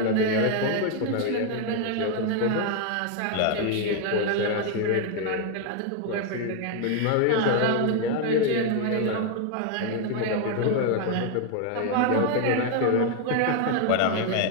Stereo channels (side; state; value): both; different; correlation 0.01